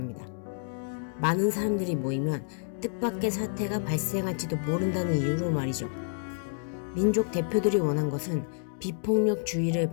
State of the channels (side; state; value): right; silent; digital silence